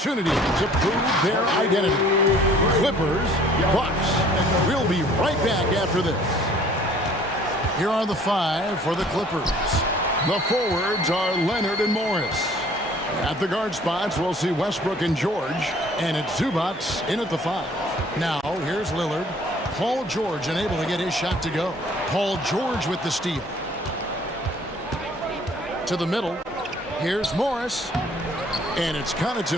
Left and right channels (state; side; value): normal; both; correlation 0.55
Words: to prove their identity. Clippers, Bucks. We'll be right back after this. Here are the five for the Clippers. The forwards are Leonard and Morris. At the guard spots, we'll see Westbrook and George. And it's Zubats in at the five. Now, here's Lillard. Paul George unable to get his shot to go. Paul George with the steal. To the middle. Here's Morris. And it's